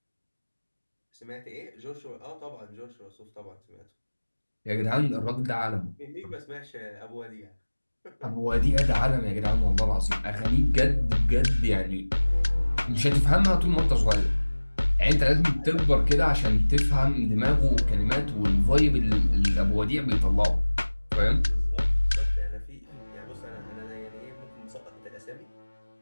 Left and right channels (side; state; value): both; inverted; correlation -1.00